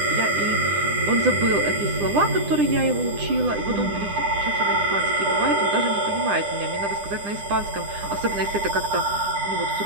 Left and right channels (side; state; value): left; late; 9.9 ms